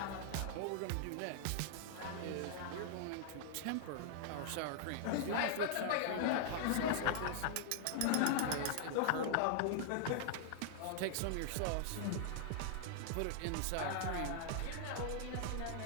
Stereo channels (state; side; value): different; both; correlation -0.01